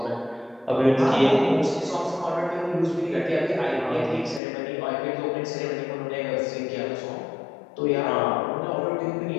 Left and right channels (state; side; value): drops out; right; at 4.4 s